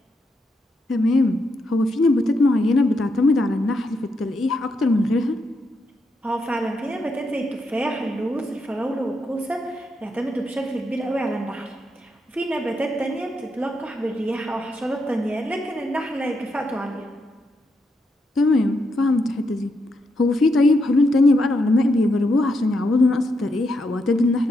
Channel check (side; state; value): both; normal; correlation 0.81